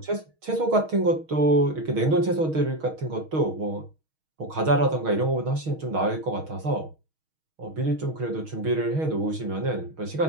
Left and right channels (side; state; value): left; late; 6.3 ms